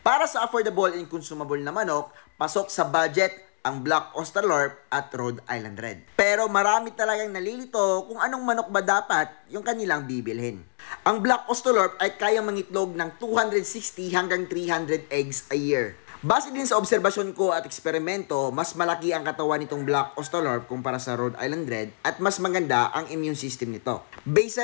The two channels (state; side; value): silent; right; 61 dB below the other